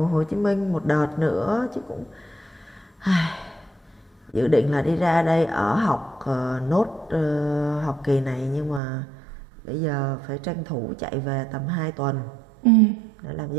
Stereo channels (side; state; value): left; drops out; at 8.8 s